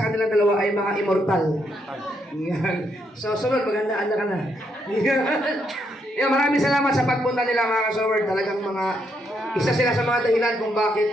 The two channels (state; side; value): normal; both; correlation 0.77